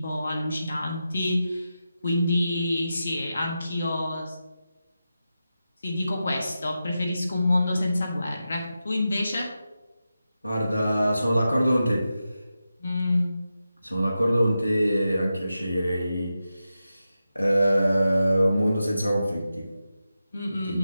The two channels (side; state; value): both; inverted; correlation -0.91